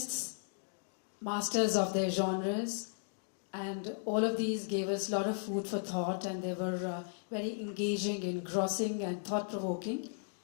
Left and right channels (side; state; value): right; silent; digital silence